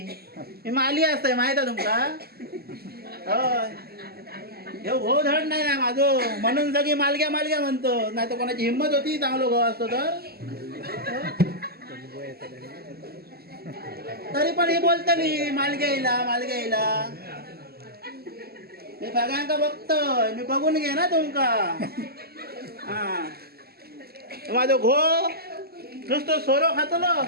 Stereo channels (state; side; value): late; left; 0.46 ms